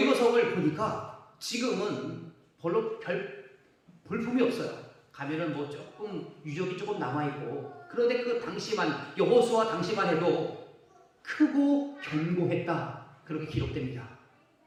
보니까 지금은 별로 별 볼품이 없어요. 가면은 뭐 조금 유적이 조금 남아있고, 그런데 그 당시만 여호수아 당시만 해도 크고 견고했다 그렇게 기록됩니다.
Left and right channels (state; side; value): identical; both; correlation 1.00